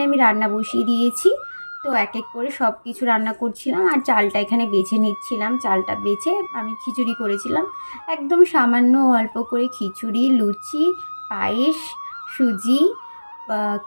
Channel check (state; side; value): inverted; both; correlation -1.00